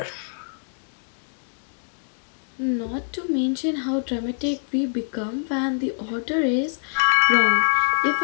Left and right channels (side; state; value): right; silent; digital silence